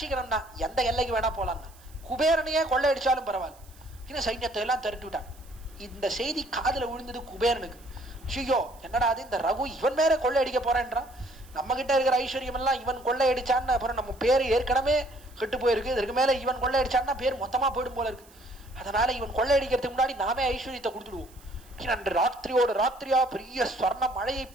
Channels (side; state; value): right; noise; hiss, 26 dB below the sound